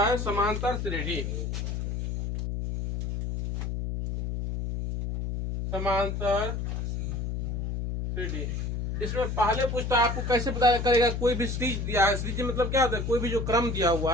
समांतर श्रेणी। समांतर श्रेणी। इसमें पहले पूछता है आपको कैसे पता करेगा, कोई भी सीरीज दिया है, सीरीज मतलब क्या होता है, कोई भी जो क्रम दिया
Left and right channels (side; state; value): left; noise; hum, 3 dB below the sound